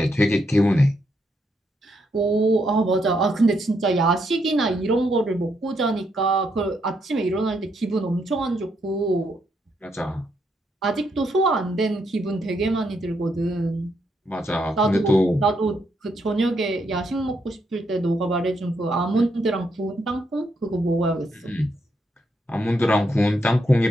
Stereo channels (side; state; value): both; normal; correlation 0.78